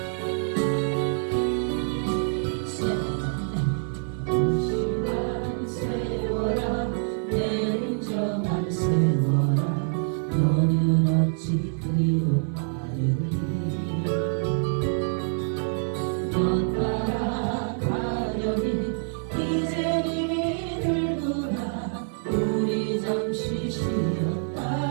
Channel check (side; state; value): left; silent; 61 dB below the other